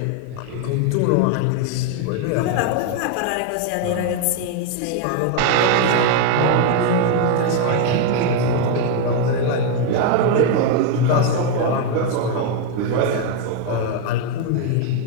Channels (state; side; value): different; both; correlation 0.01